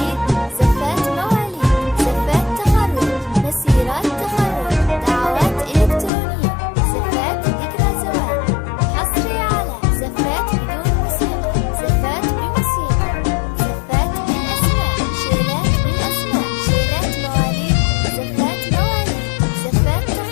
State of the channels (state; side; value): drops out; right; at 6.1 s